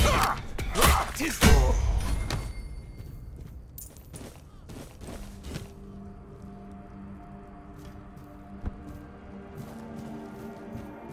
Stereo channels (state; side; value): identical; both; correlation 1.00